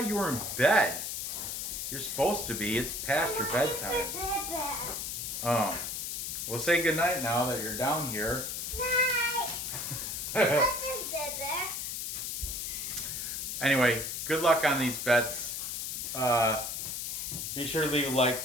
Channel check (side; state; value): left; noise; hiss, 4 dB below the sound